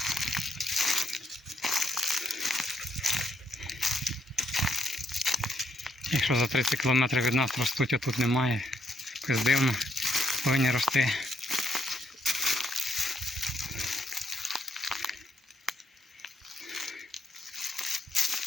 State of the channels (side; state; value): both; normal; correlation 0.75